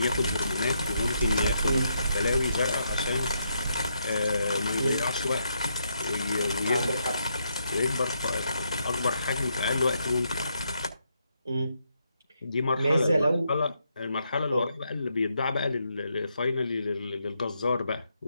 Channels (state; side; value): inverted; both; correlation -0.79